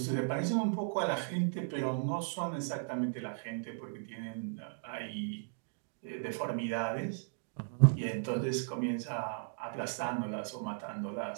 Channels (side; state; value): left; silent; digital silence